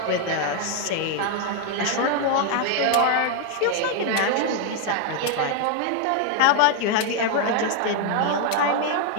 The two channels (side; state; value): both; different; correlation 0.00